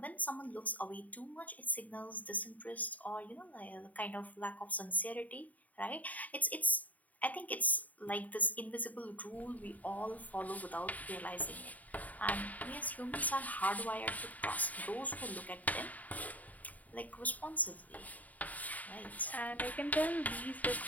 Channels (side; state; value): right; late; 0.074 ms